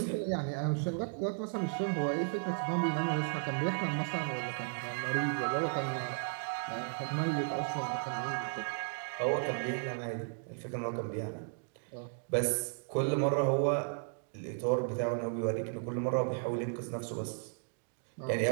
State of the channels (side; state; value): left; silent; 55 dB below the other